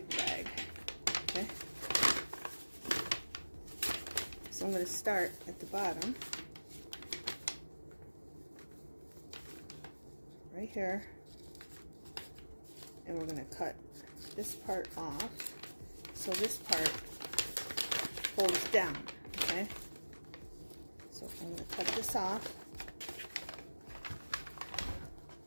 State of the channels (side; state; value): both; inverted; correlation -1.00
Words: bag. Okay? So I'm going to start at the bottom. Right here. And we're going to cut this part off. So this part folds down. Okay? So I'm going to cut this off.